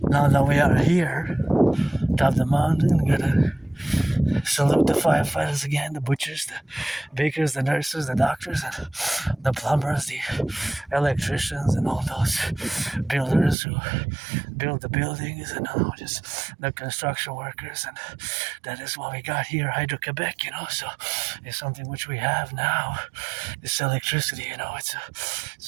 now that we are here, top of the mountain, gotta salute the firefighters again, the butchers, the bakers, the nurses, the doctors, and the plumbers, the electricians, and all those builders who build the buildings, and just the construction workers. And that is what we got here, Hydro-Quebec, So it's something which we have now, this electricity,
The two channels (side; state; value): left; drops out; at 13.6 s